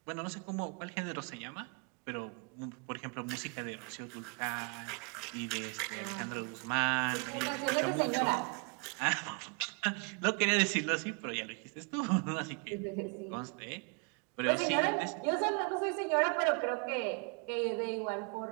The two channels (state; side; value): quieter; left; 34.8 dB